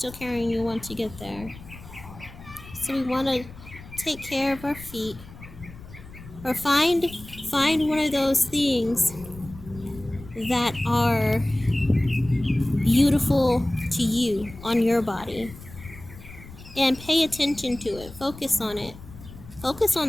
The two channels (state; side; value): noise; left; rumble, 17 dB below the sound